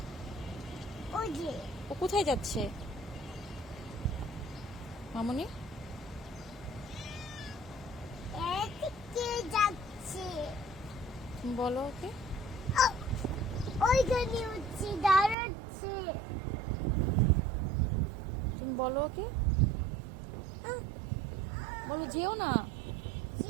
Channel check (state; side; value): drops out; left; at 15.4 s